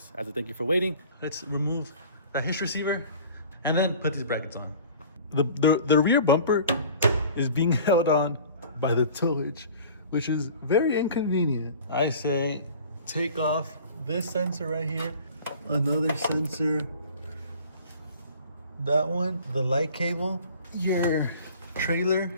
as a thank you for waiting. Let's remove the Hitch receiver and then put these brackets on. The rear bumper is being held on by the tow hitch, which is very inconvenient. I say take off this sensor right here, another sensor, that one, the light cable, your trailer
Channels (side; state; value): both; inverted; correlation -0.46